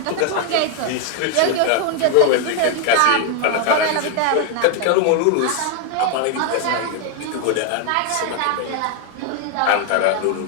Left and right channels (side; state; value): both; different; correlation 0.00